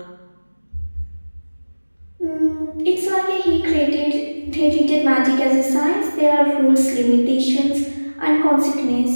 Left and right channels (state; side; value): inverted; both; correlation -1.00